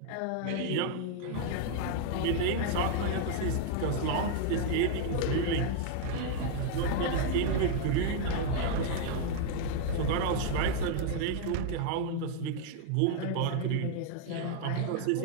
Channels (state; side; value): different; both; correlation 0.00